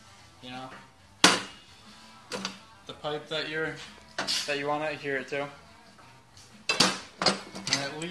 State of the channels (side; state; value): both; identical; correlation 1.00